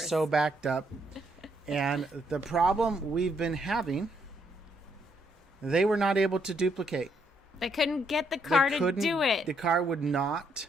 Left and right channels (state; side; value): normal; both; correlation 0.73